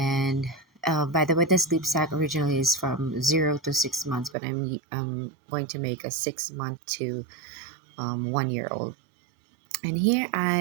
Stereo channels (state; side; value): drops out; left; at 4.4 s